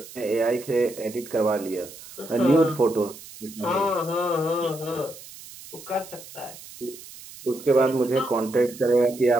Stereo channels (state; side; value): noise; right; hiss, 17 dB below the sound